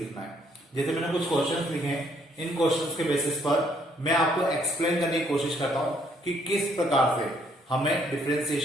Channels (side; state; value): both; normal; correlation 0.67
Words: है. जैसे मैंने कुछ क्वेश्चंस लिखे हैं, इन क्वेश्चंस के बेसिस पर मैं आपको एक्सप्लेन करने की कोशिश करता हूं कि किस प्रकार से हमें